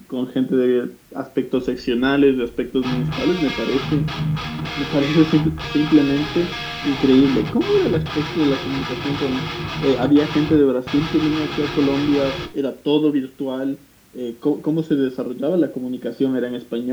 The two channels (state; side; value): identical; both; correlation 1.00